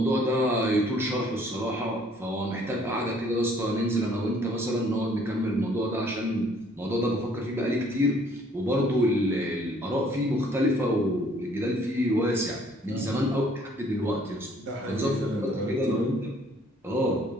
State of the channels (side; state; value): both; normal; correlation 0.60